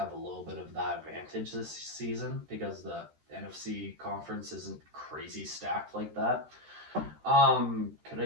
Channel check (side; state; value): left; late; 13 ms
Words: a little bit of that advantage this season because the NFC conference isn't crazy stacked like that. Could